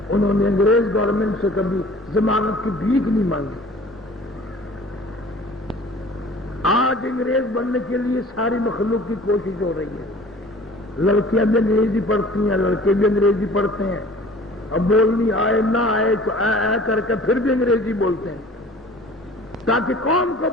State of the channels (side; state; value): both; normal; correlation 0.47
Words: انہوں نے انگریز گورنمنٹ سے کبھی ضمانت کی بھیک نہیں مانگی۔ آج انگریز بننے کے لیے ساری مخلوق کی کوشش ہو رہی ہے، لڑکیاں بھی انگریزی پڑھتی ہیں، لڑکے بھی انگریزی پڑھتے ہیں، اب بولنی آئے نہ آئے تو اے کر کے پھر بھی انگریزی بولتے ہیں، تاکہ قوم کو